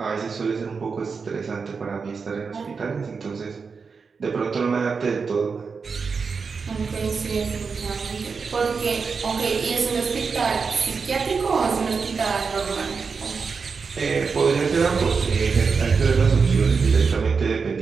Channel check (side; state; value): left; quieter; 5.2 dB